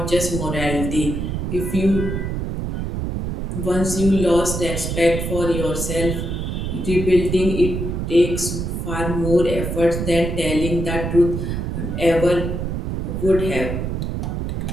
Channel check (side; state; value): right; noise; rumble, 3 dB below the sound